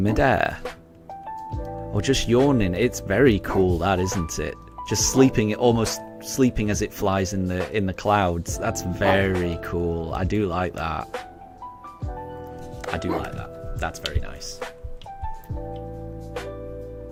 Or just yawning? It's very cool, that, isn't it? Just sleeping, almost sleeping as it flies in the clouds. That's very cool. I do like that. I do like that. That's very nice.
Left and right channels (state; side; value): identical; both; correlation 1.00